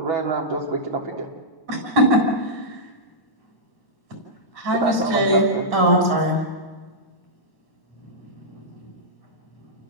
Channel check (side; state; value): right; late; 1.1 ms